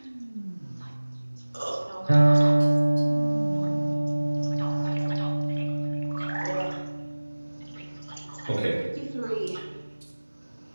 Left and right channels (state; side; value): inverted; both; correlation -1.00